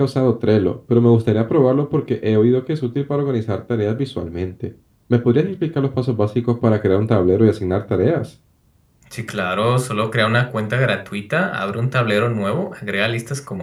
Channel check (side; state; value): both; identical; correlation 1.00